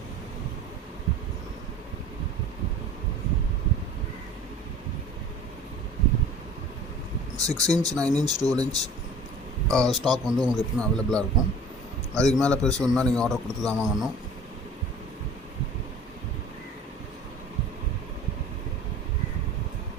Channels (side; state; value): both; normal; correlation 0.44